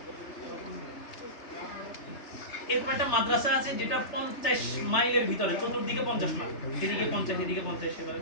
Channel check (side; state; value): right; late; 3.3 ms